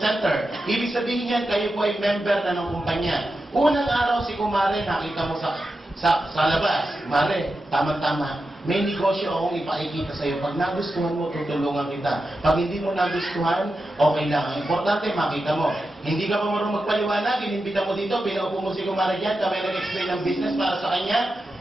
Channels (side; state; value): both; normal; correlation 0.90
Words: Ibig sabihin yan, kayo po ay member na ng kumpanya. Unang araw si Kumare, nakita mo sa labas. Mare, tama-tama. May negosyo akong ipakikita sa iyo. Pag nagustuhan mo, tutulungan kita. Pag hindi mo nagustuhan, okay lang. Ang importante, makita mo. Hindi ka pa marunong magpaliwanag, inimbita mo dito, pinaupo mo si Kumare dyan, kami nag-explain ng business para sa kanya.